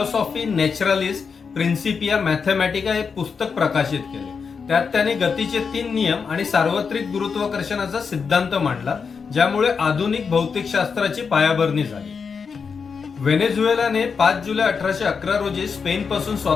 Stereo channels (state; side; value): quieter; right; 5.7 dB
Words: नॅचरलिस प्रिन्सिपिया मॅथमॅटिका हे पुस्तक प्रकाशित केले. त्यात त्यांनी गतीचे 3 नियम आणि सार्वत्रिक गुरुत्वाकर्षणाचा सिद्धांत मांडला, ज्यामुळे आधुनिक भौतिकशास्त्राची पायाभरणी झाली. व्हेनेझुएलाने 5 जुलै 1811 रोजी स्पेनपासून